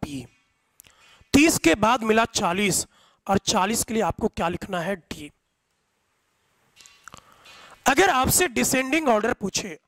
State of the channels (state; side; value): identical; both; correlation 1.00